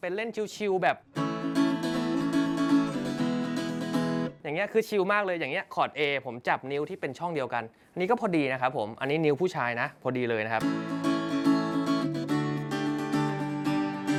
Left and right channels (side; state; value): both; identical; correlation 1.00